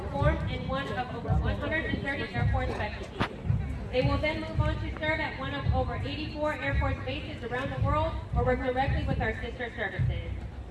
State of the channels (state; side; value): identical; both; correlation 1.00